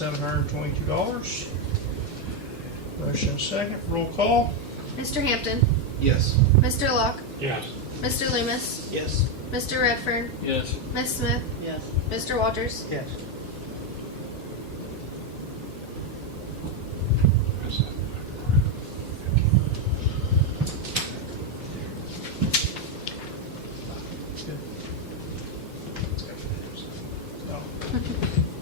Motion second. Roll call. Mr. Hampton, Yes. Mr. Locke, Yes. Mr. Loomis, Yes. Mr. Redfern, Yes. Ms. Smith, Yes. Mr. Walters. Yes. Good. No.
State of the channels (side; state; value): both; normal; correlation 0.05